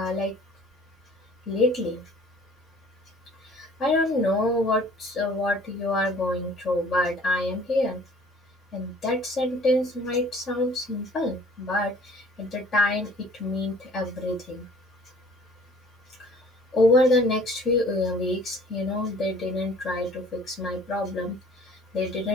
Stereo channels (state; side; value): normal; both; correlation 0.52